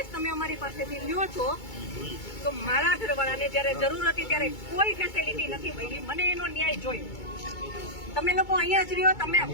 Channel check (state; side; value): late; right; 2.2 ms